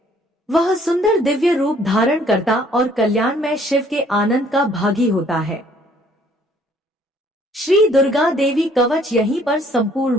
वह सुंदर दिव्य रूप धारण करता और कल्याणमय शिव के आनंद का भागी होता है। श्री दुर्गा देवी कवच यहीं पर संपूर्ण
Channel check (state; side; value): normal; both; correlation 0.61